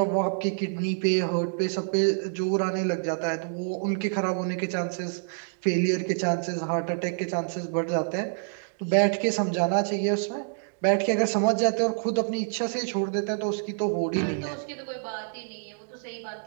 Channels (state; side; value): silent; left; digital silence